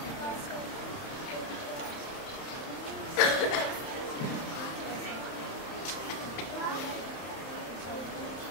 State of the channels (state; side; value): late; right; 30 ms